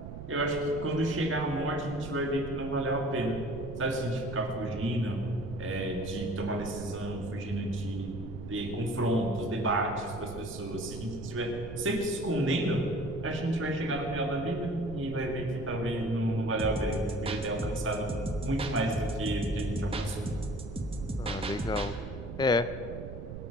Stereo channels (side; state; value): right; noise; rumble, 9 dB below the sound